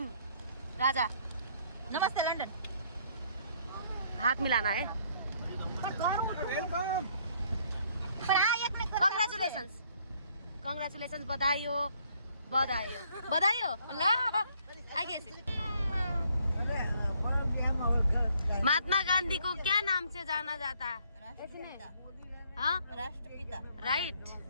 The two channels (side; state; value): both; inverted; correlation -0.65